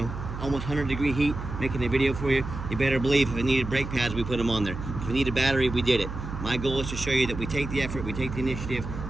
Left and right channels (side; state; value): right; noise; hum, 7 dB below the sound